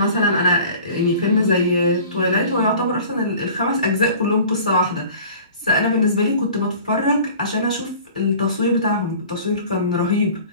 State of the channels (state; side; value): inverted; both; correlation -0.45